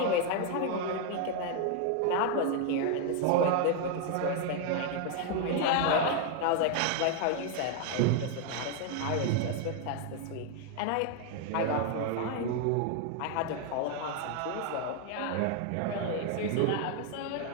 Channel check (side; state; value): both; different; correlation 0.01